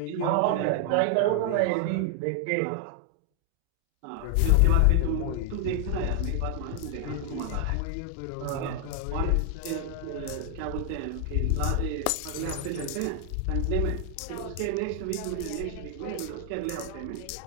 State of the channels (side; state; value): both; different; correlation 0.00